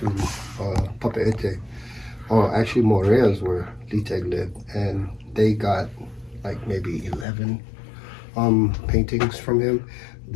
Papeete. Oh, actually Morea's where Liteg lived, and they got like maybe 11 paintings from him.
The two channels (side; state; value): right; drops out; at 7.2 s